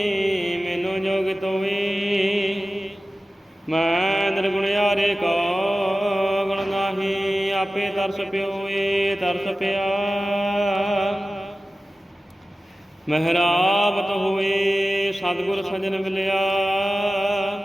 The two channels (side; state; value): both; normal; correlation 0.95